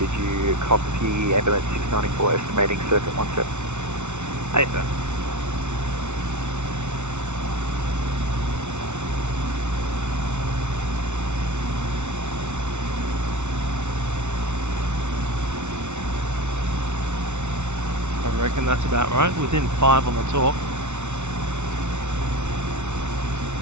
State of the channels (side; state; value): left; late; 0.83 ms